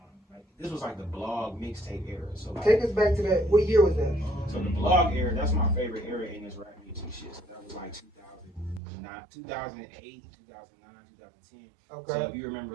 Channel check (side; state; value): left; drops out; at 8.8 s